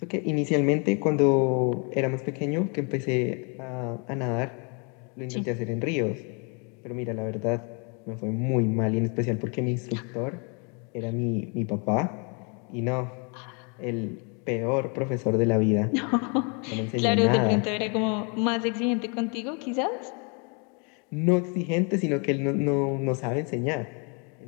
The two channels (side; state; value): right; quieter; 35.5 dB